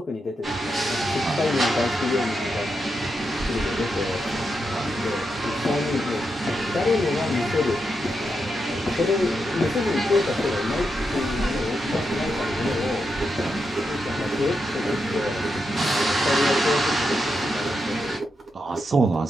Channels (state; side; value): normal; both; correlation 0.85